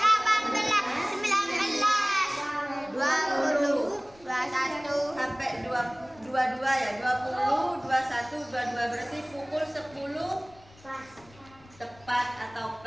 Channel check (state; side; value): noise; left; rumble, 25 dB below the sound